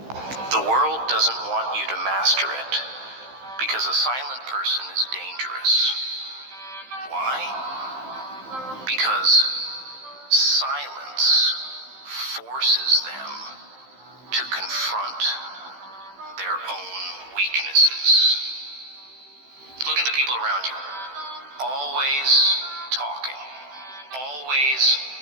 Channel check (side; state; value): left; late; 15 ms